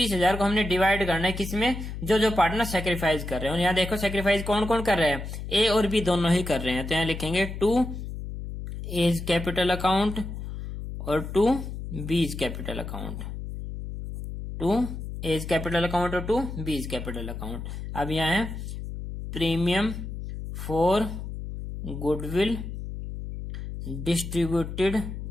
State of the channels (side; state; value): left; noise; hum, 7 dB below the sound